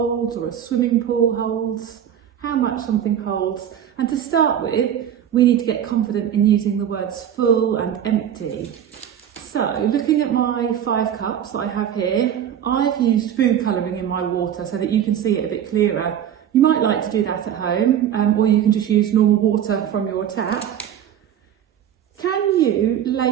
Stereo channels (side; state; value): left; quieter; 9.7 dB